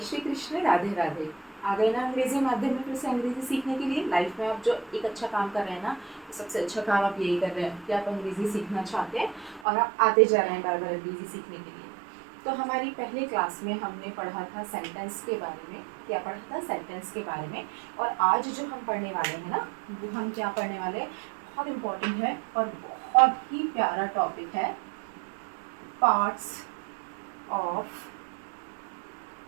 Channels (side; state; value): left; drops out; at 9.7 s